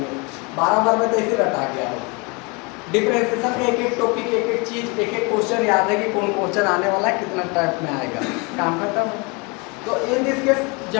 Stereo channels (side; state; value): right; quieter; 29.6 dB